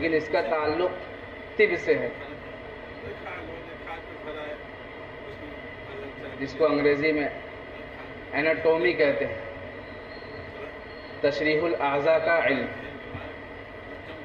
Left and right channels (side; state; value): both; identical; correlation 1.00